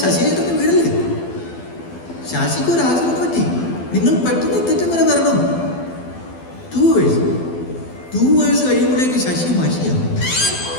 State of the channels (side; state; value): right; late; 12 ms